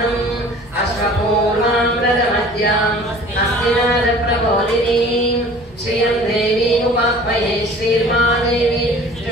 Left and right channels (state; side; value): normal; both; correlation 0.47